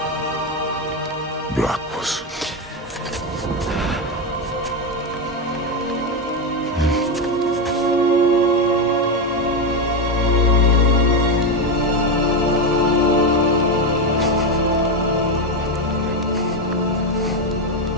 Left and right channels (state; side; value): normal; both; correlation 0.10